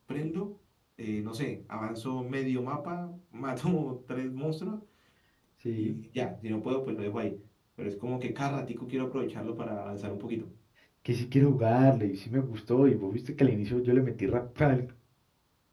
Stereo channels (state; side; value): identical; both; correlation 1.00